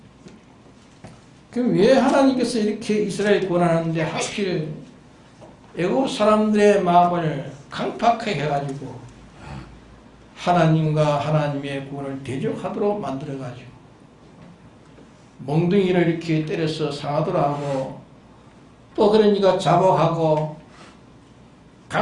그럼 왜 하나님께서 이렇게 이스라엘 구원하는데 하필 애국 사람들의 마음을 강팍하게 해가지고 하나님과 하나님의 구원을 대적하도록 만들어가지고 몽둥이를 이렇게 때려서 상하도록 하고 또 그러니까 자복하고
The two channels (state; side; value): identical; both; correlation 1.00